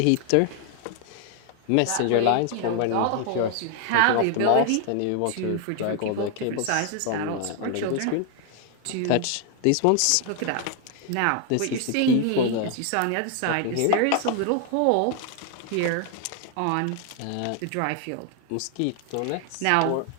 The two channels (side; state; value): both; different; correlation 0.00